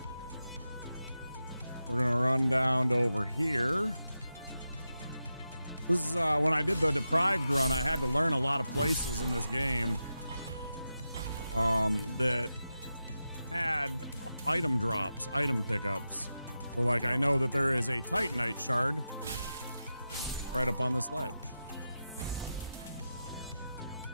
We're going to run down to over here. This is when I did the Deprived run, I had to learn a lot of places in this game that had item drops, item pickups. So, like, I know that there is a Titanite shard right up on this ledge.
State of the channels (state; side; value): inverted; both; correlation -0.90